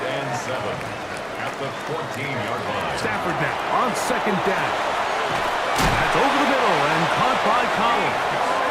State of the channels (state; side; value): identical; both; correlation 1.00